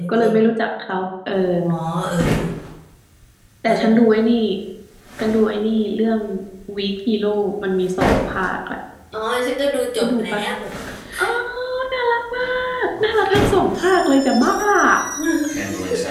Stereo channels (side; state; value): both; identical; correlation 1.00